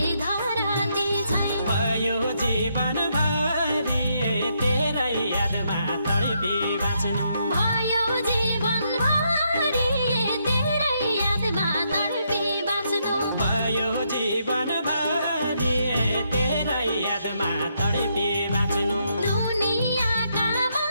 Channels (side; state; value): both; inverted; correlation -0.77